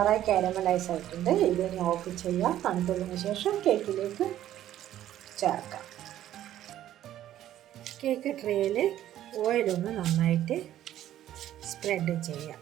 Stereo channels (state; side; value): quieter; left; 12.4 dB